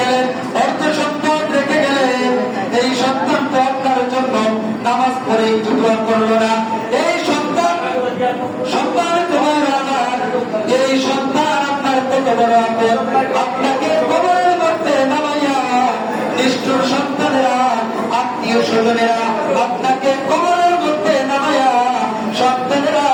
অর্থ সম্পদ রেখে গেলেন, এই সন্তান তো আপনার জন্য নামাজ পড়ে একটু দোয়া করলো না। এই সন্তান তোমার আমার, এই সন্তান আপনার কত বড় আপন, আপনাকে কবরের মধ্যে নামাইয়া নিষ্ঠুর সন্তানেরা, আত্মীয় স্বজনেরা আপনাকে কবরের মধ্যে নামাইয়া, সন্তানেরা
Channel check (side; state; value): both; identical; correlation 1.00